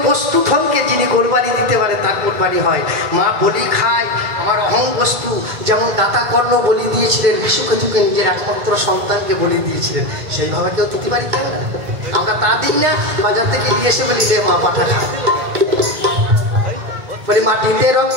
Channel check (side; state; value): left; late; 2.2 ms